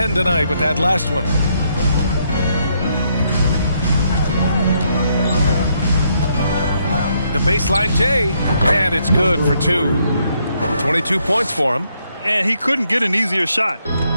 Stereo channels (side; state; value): both; inverted; correlation -0.74